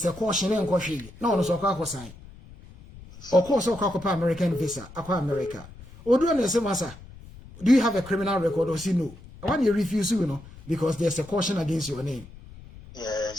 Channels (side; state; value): left; noise; rumble, 19 dB below the sound